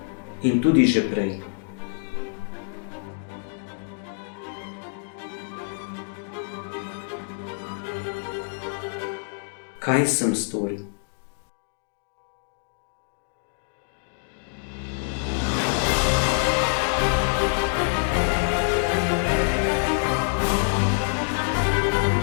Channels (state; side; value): silent; right; digital silence